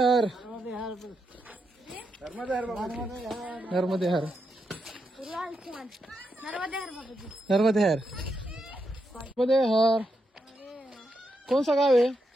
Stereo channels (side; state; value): both; normal; correlation 0.83